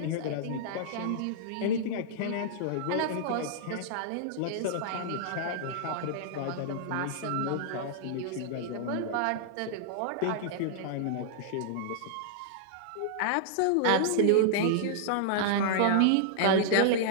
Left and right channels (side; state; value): both; different; correlation -0.01